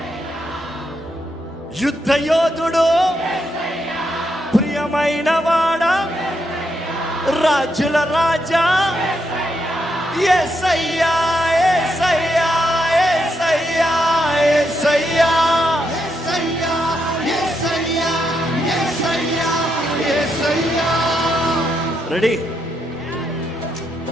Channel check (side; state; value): both; normal; correlation 0.80